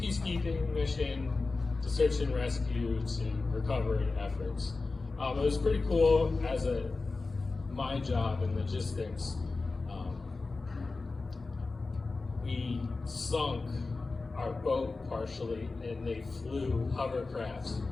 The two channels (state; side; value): quieter; right; 3.7 dB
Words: mission to search and rescue to recovery efforts. It was pretty cool as my job in logistics. We sunk our boat partially, and they flew hovercrafts,